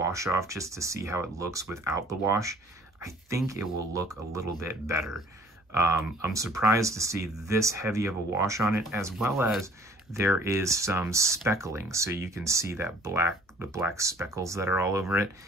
off just to see how it looks without the wash. I think it will look a little bit better. I'm surprised to see this heavy of a wash on it, as well as there is some speckling. So you can see that the black speckles that are all over it.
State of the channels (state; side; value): normal; both; correlation 0.53